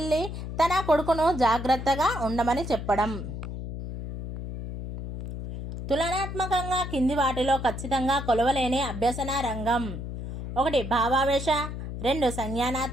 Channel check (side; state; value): left; noise; hum, 7 dB below the sound